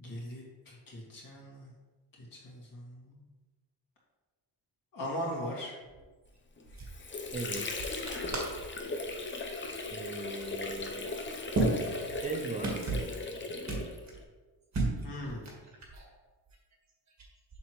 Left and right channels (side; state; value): both; normal; correlation 0.29